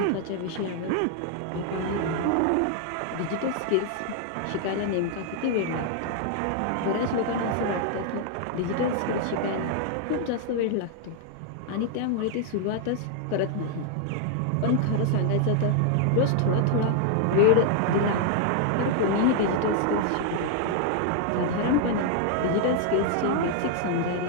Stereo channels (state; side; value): different; both; correlation 0.00